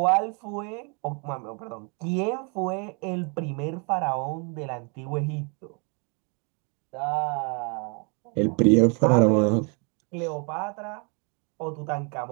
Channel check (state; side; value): quieter; left; 35.0 dB